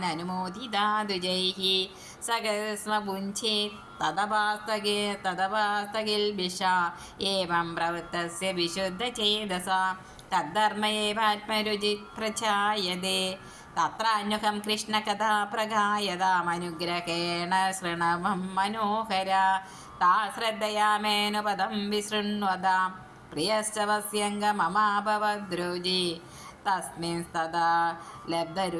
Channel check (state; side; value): identical; both; correlation 1.00